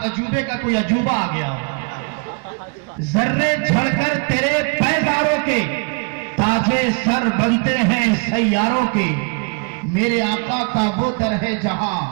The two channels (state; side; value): quieter; left; 33.9 dB